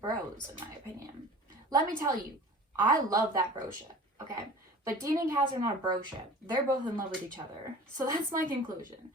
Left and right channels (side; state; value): both; normal; correlation 0.42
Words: in my opinion. Let me tell you, I love that bro ship, okay? But Dean and Cass are not a bro ship. They're both in love with each other. So that's my conclusion.